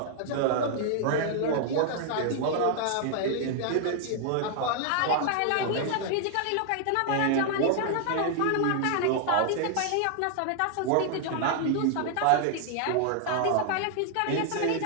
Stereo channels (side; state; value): both; different; correlation -0.01